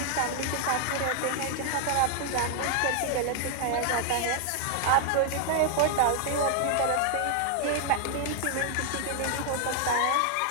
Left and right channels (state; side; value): different; both; correlation 0.00